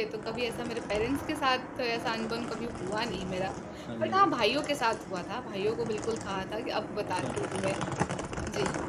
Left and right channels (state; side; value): identical; both; correlation 1.00